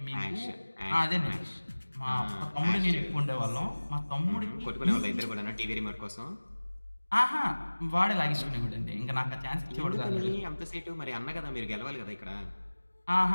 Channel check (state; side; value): inverted; both; correlation -1.00